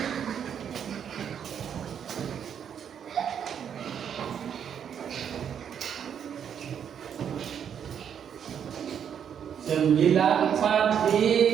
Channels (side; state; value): left; quieter; 8.3 dB